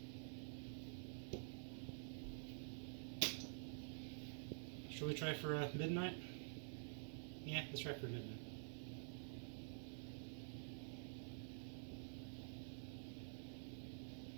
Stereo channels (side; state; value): left; silent; digital silence